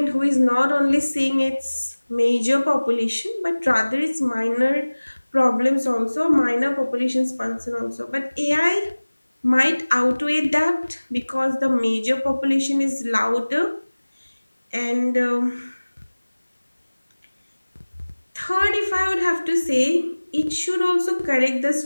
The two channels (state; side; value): inverted; both; correlation -1.00